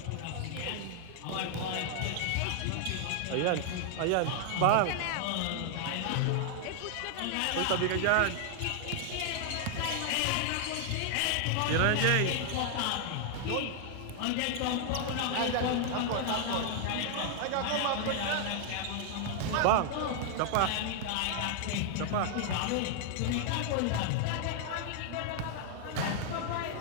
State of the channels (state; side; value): different; both; correlation 0.00